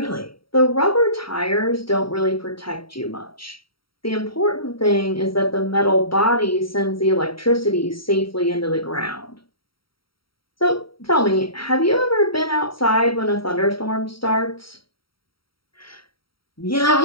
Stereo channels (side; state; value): right; late; 0.75 ms